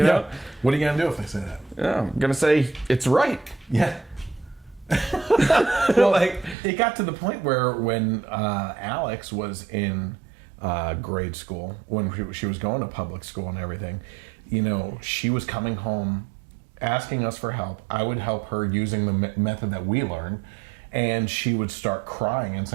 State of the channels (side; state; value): left; drops out; at 6.6 s